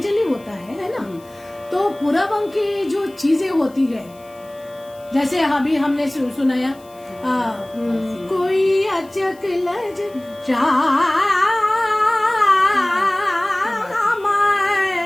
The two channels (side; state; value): left; noise; hiss, 28 dB below the sound